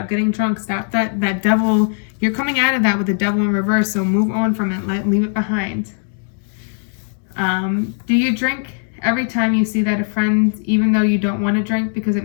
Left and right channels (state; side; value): silent; right; digital silence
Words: getting drunk. Stop that devil. You're coming out of that with the devil in reverse, so move on from it. Leave it behind. Do you drink every time you see that a friend, even though you don't want to drink because it